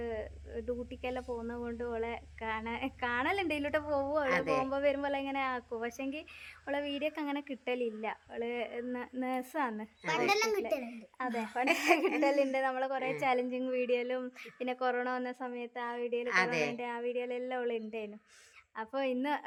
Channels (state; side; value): identical; both; correlation 1.00